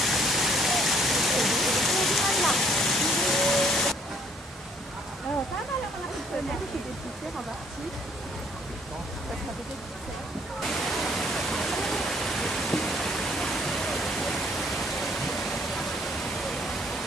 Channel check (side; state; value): both; normal; correlation 0.63